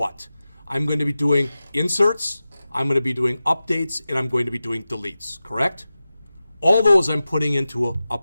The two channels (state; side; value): inverted; both; correlation -0.94